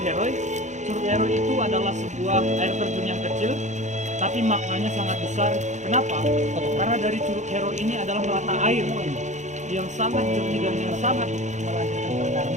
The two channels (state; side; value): late; left; 0.34 ms